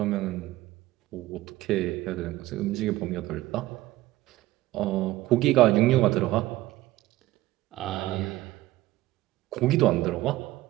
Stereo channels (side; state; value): left; quieter; 17.0 dB